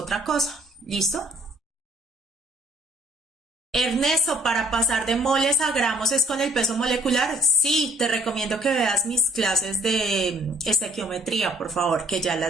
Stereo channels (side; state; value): both; normal; correlation 0.61